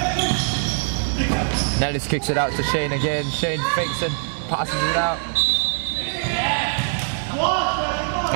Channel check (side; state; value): left; silent; digital silence